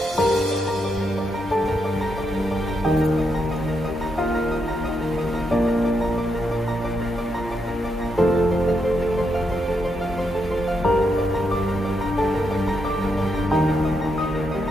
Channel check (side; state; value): both; normal; correlation 0.81